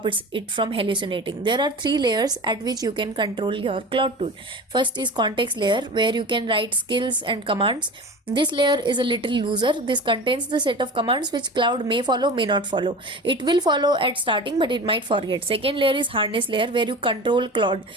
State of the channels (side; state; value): both; normal; correlation 0.34